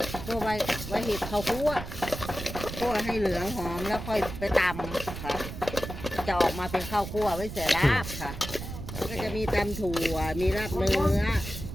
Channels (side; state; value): right; noise; rumble, 9 dB below the sound